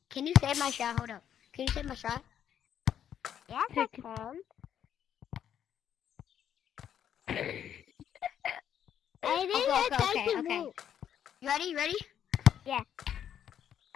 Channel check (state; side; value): quieter; right; 9.5 dB